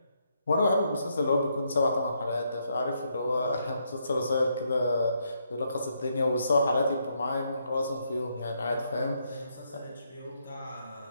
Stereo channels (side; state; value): both; inverted; correlation -0.76